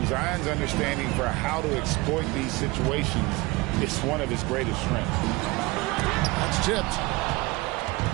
Zion's understanding for how to exploit these situations is one of his greatest strengths. That's tipped.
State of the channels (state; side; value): quieter; left; 22.8 dB